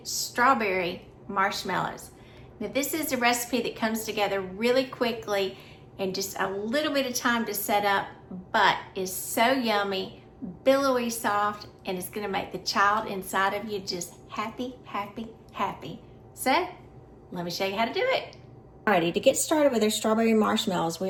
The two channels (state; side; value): identical; both; correlation 1.00